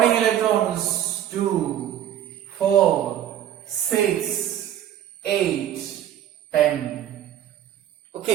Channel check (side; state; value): left; quieter; 11.1 dB